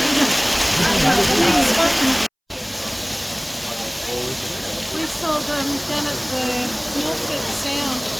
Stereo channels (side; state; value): both; identical; correlation 1.00